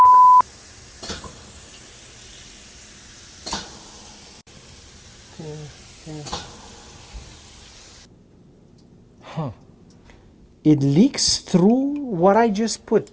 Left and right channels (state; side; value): identical; both; correlation 1.00